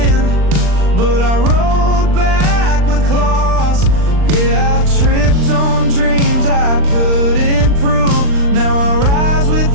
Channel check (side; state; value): left; late; 39 ms